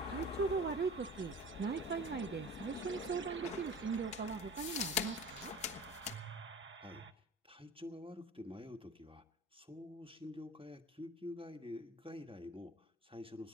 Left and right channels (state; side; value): normal; both; correlation 0.38